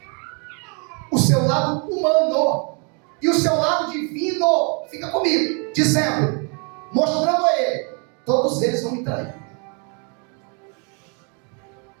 o seu lado humano, e o seu lado divino fica comigo, dizendo, mostrando a ele: todos eles vão me trair,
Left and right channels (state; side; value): quieter; left; 36.2 dB